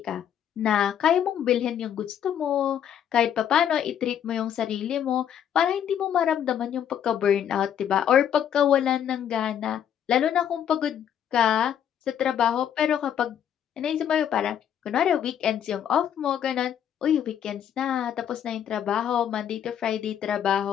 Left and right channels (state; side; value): quieter; right; 9.5 dB